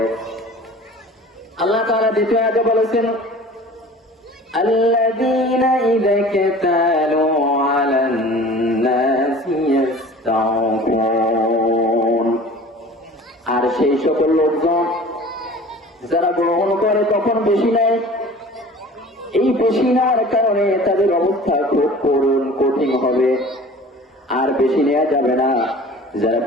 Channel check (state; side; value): normal; both; correlation 0.43